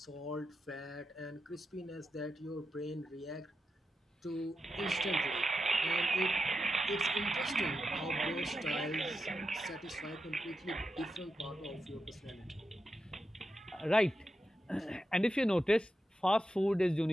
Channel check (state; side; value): normal; both; correlation 0.88